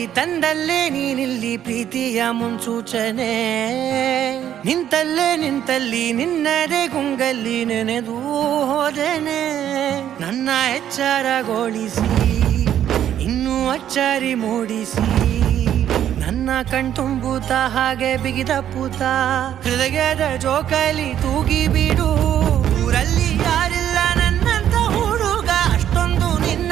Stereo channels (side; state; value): left; quieter; 10.5 dB